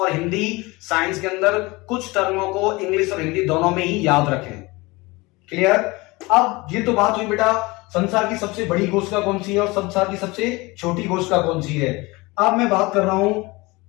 हिंदी साइंस के अंदर कुछ टर्मों को इंग्लिश और हिंदी दोनों में ही याद रखें। क्लियर? अब ये तो बात हुई बेटा संसार की सबसे बड़ी कोशिका कौन सी है और संसार की सबसे छोटी कोशिका कौन सी है। अब मैं बात कर रहा हूं,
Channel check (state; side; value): quieter; right; 23.4 dB